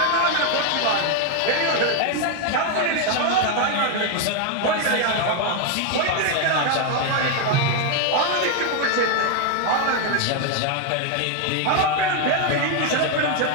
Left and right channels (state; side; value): different; both; correlation 0.01